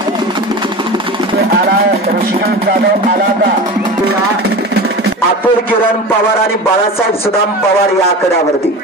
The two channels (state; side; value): normal; both; correlation 0.31